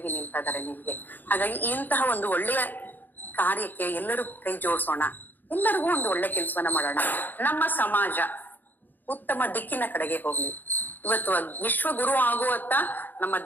ನಿಲ್ತಾ ಇದ್ದಾರೆ ನಿಮ್ಗೆ. ಹಾಗಾಗಿ ಇಂತಹ ಒಂದು ಒಳ್ಳೆಯ ಕಾರ್ಯಕ್ಕೆ ಎಲ್ಲರೂ ಕೈ ಜೋಡಿಸೋಣ, ಎಲ್ಲರಿಗೂ ಒಂದು ಒಳ್ಳೆ ಕೆಲಸವನ್ನ ಮಾಡೋಣ. ನಮ್ಮ ಸಮಾಜ ಉತ್ತಮ ದಿಕ್ಕಿನ ಕಡೆಗೆ ಹೋಗ್ಲಿ. ಇವತ್ತು ವಿಶ್ವ ಗುರು ಆಗುವತ್ತ ನಮ್ಮ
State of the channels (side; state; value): right; late; 0.088 ms